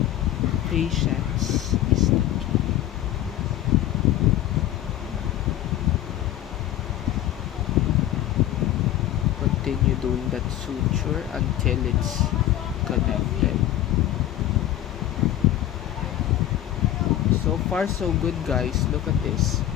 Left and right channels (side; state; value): right; quieter; 12.9 dB